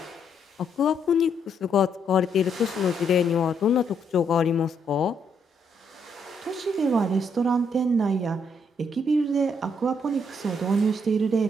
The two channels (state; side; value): normal; both; correlation 0.74